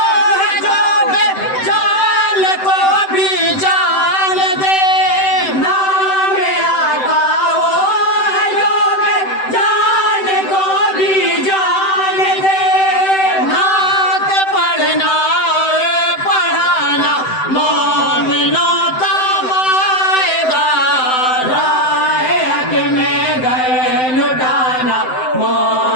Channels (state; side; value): late; right; 7.8 ms